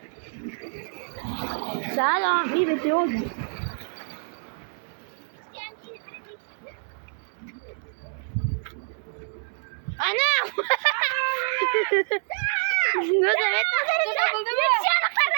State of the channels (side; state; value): left; silent; 61 dB below the other